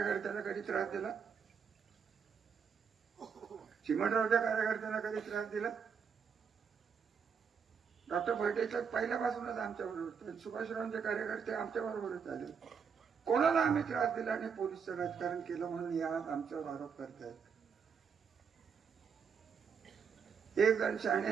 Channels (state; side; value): quieter; left; 6.5 dB